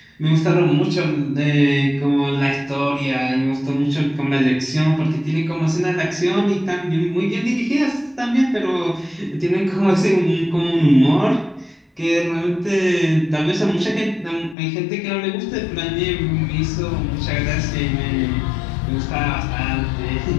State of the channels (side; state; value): right; drops out; at 14.6 s